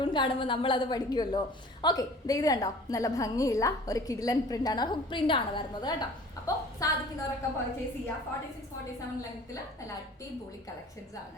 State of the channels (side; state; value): both; normal; correlation 0.47